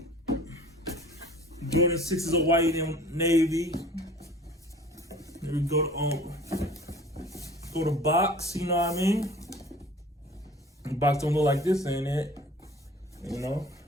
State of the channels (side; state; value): both; normal; correlation 0.46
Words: Jordan 6s are white and navy. Here we go to box. You know what I mean? The box don't look like this, ain't it? You know.